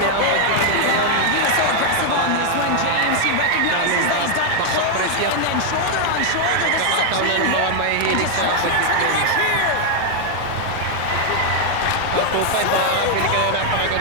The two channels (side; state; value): both; different; correlation 0.00